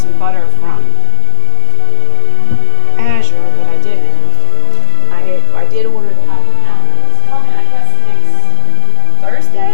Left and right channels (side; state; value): both; different; correlation 0.00